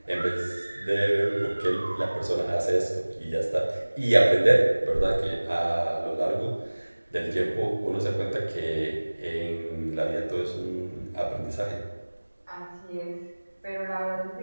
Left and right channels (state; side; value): inverted; both; correlation -1.00